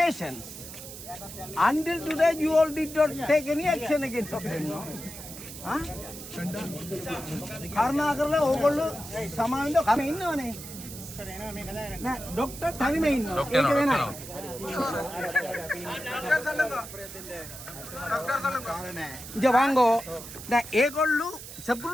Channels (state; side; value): noise; right; hiss, 12 dB below the sound